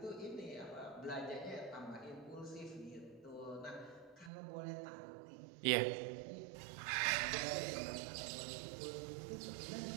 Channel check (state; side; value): drops out; left; at 4.3 s